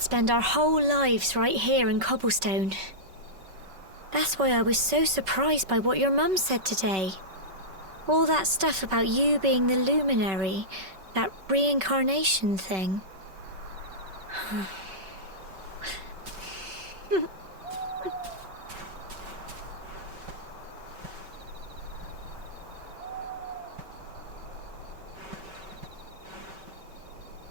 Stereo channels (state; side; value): late; left; 5.3 ms